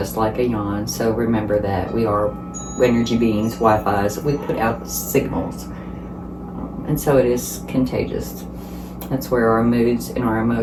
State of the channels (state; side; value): identical; both; correlation 1.00